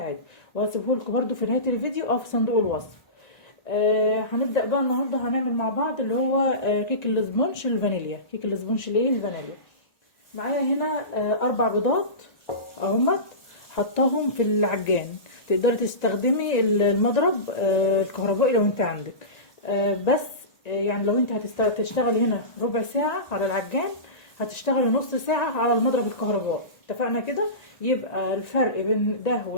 وهسيبه لكم برضو في نهاية الفيديو او في صندوق الوصف. هنبدأ بقى النهارده هنعمل مع بعض اللي هو كيك الاسبونج الفانيليا. كيك الاسبونج الايه الفانيليا. معايا هنا 4 بيضات اهمت، حطاهم في العجان. تقدري تستخدمي المضرب الكهربائي لو انت عندك، بس يعني لو انت هتشتغلي هنا ربع ساعة على العجان، هتشتغلي نص ساعة على المضرب الكهربائي. اتفقنا كده؟ يبقى الفرق بين ده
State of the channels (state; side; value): late; right; 1.9 ms